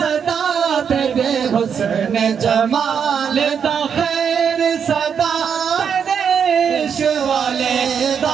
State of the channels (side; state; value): left; quieter; 7.2 dB